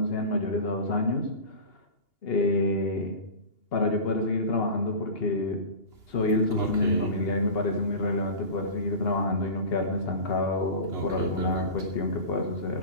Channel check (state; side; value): late; right; 2.8 ms